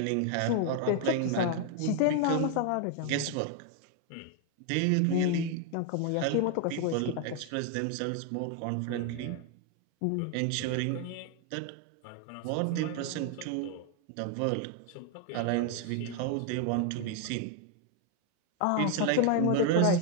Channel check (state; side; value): different; both; correlation 0.01